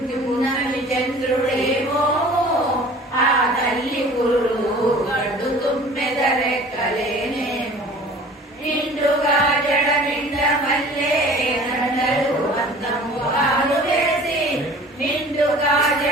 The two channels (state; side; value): normal; both; correlation 0.46